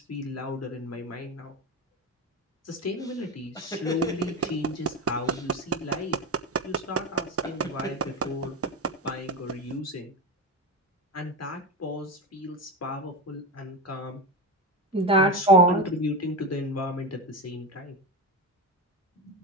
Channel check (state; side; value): normal; both; correlation 0.19